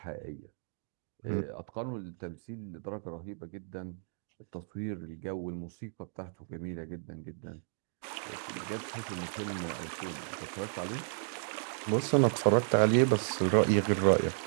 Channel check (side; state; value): left; silent; digital silence